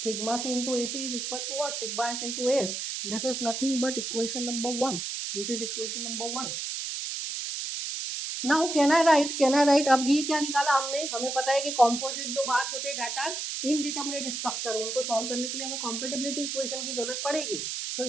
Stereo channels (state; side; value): noise; right; hiss, 4 dB below the sound